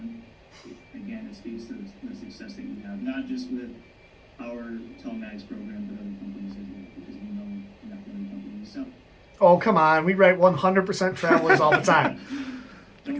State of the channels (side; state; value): both; identical; correlation 1.00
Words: again, it speaks to the success that you have, not just with our telematics program, but other companies as well, because we know you're not the only company. So, oh, come on. We write 100% travelers all the time.